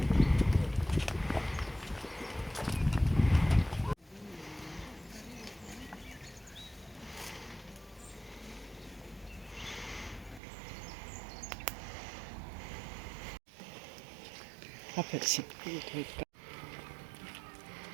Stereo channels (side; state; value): left; drops out; at 10.4 s